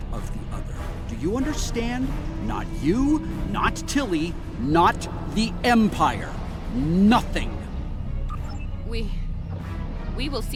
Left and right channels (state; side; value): identical; both; correlation 1.00